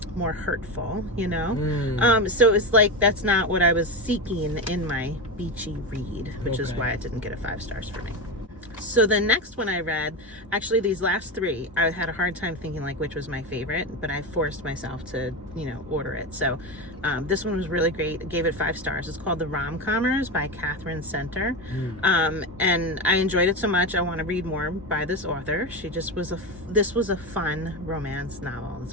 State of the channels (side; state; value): both; normal; correlation 0.18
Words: more hurtful, you know. So it's like, that's not what I was seeking in my beachy read, which is why it didn't get a 5 stars for me. So the next one I read, actually these last 3, I had a hard time thinking like which was my favorite, but I forced myself to, you know, order it. So this one was really great. I gave it 5 stars. It's called the Rom-Commers by Katherine. And I enjoyed it so much, I want to read more by this author. She just was this was a fun romance novel.